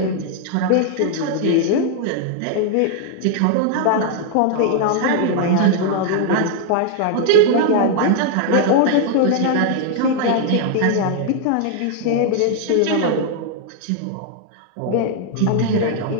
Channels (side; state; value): both; different; correlation 0.00